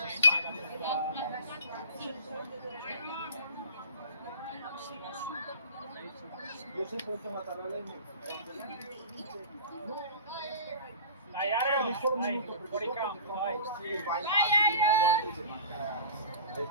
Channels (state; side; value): inverted; both; correlation -0.38